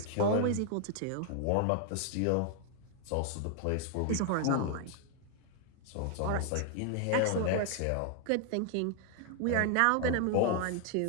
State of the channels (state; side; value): different; both; correlation 0.00